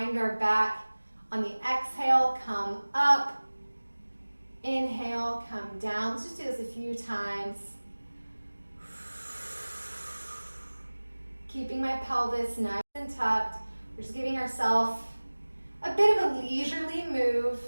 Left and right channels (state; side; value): inverted; both; correlation -1.00